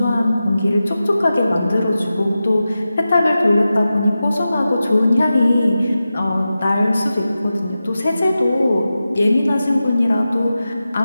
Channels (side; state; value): both; inverted; correlation -0.93